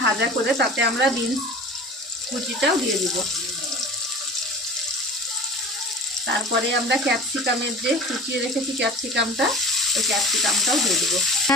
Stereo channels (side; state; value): both; normal; correlation 0.39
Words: ভাজা করে তাতে আমরা বিনস কুচিটাও দিয়ে দিব। তারপরে আমরা ক্যাপসিকামের যে কুচিয়ে রেখেছি ক্যাপসিকামটা, ওই ক্যাপসিকামটাও দিয়ে দেবো।